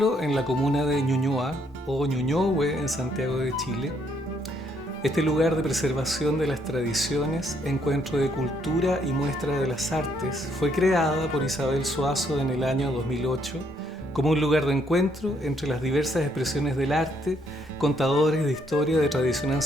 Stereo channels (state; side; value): normal; both; correlation 0.71